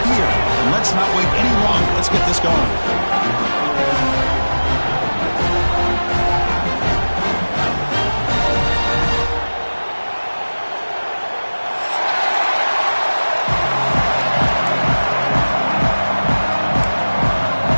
and let's not wait any longer. Let's get this going.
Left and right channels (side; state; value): both; inverted; correlation -1.00